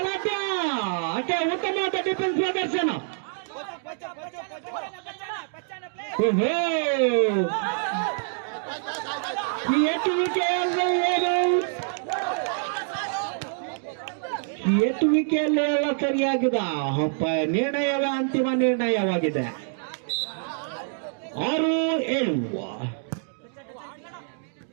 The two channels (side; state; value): left; silent; digital silence